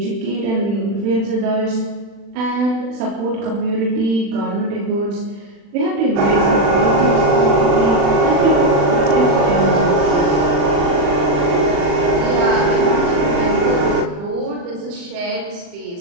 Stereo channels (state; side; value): late; left; 40 ms